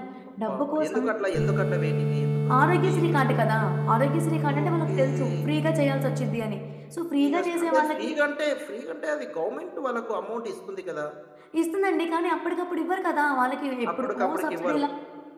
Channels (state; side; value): identical; both; correlation 1.00